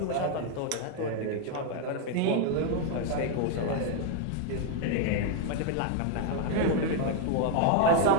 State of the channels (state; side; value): different; both; correlation 0.01